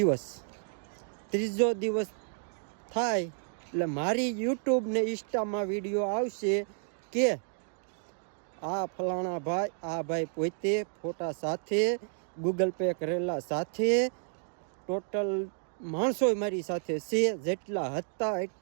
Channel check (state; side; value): silent; left; digital silence